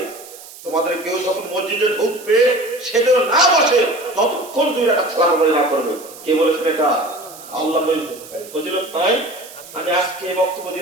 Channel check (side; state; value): right; noise; hiss, 17 dB below the sound